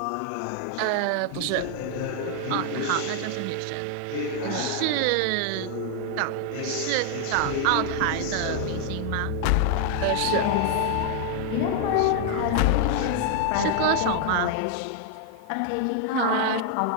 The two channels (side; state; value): both; different; correlation 0.00